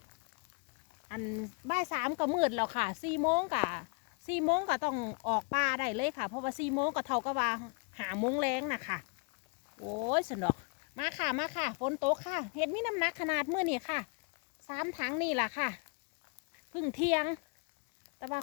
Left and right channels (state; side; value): quieter; right; 34.3 dB